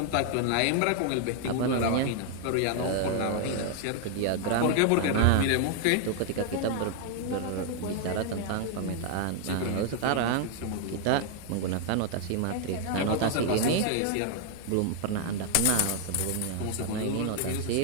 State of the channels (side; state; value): both; different; correlation 0.00